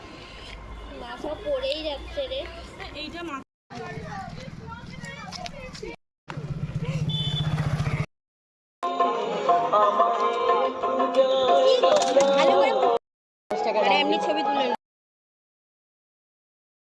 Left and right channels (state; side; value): identical; both; correlation 1.00